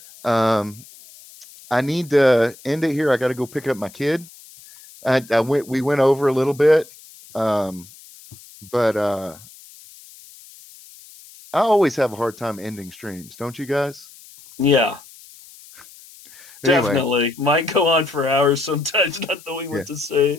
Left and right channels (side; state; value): left; noise; hiss, 21 dB below the sound